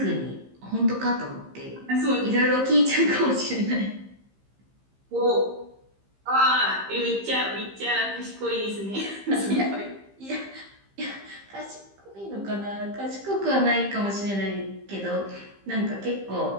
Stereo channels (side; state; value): left; late; 15 ms